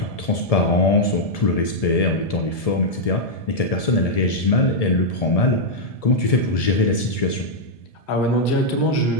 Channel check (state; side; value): late; right; 1.7 ms